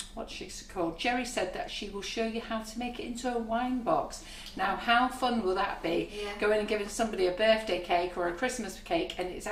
what's she called? Jerry said that she will show you how to make it into a wine box. Now, how fun will that be? Yeah. Going and giving somebody a birthday cake or a Christmas cake, and it's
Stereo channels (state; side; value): identical; both; correlation 1.00